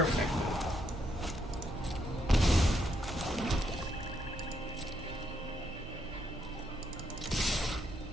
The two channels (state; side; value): normal; both; correlation 0.76